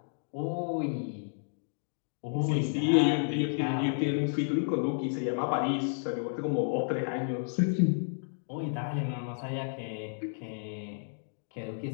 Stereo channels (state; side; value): silent; right; digital silence